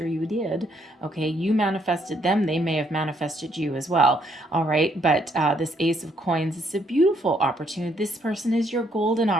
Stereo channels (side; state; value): both; normal; correlation 0.71